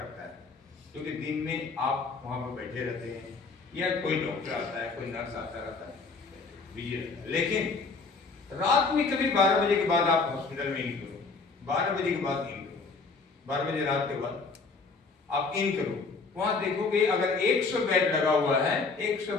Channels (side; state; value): right; quieter; 4.3 dB